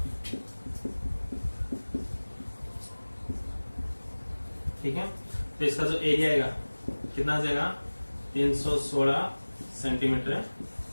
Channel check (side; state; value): both; inverted; correlation -1.00